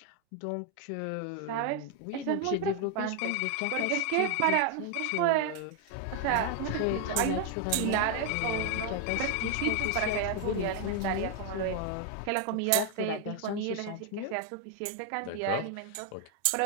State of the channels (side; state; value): both; different; correlation 0.00